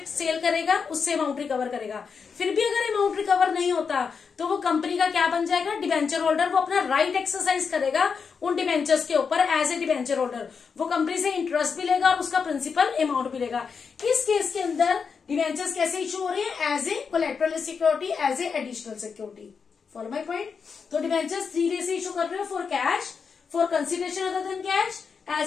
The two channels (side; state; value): right; quieter; 5.8 dB